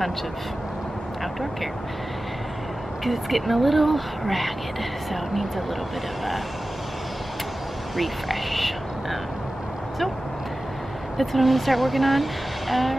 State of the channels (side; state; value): both; normal; correlation 0.95